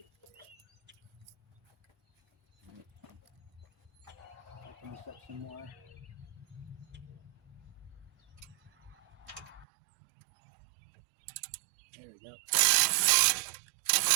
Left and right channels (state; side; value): drops out; left; at 9.7 s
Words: it. Open this up some more. There we go.